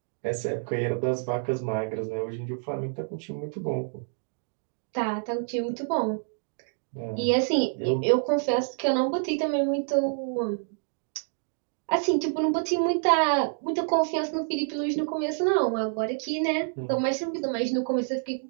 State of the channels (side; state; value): left; silent; digital silence